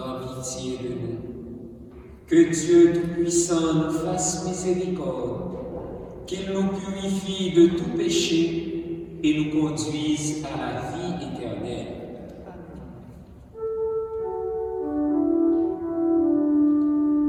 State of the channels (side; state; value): both; identical; correlation 1.00